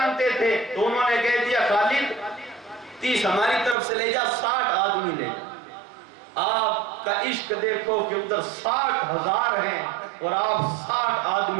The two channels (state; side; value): drops out; left; at 3.8 s